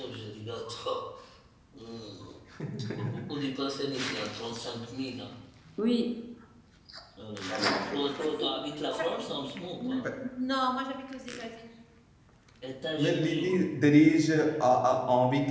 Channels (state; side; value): identical; both; correlation 1.00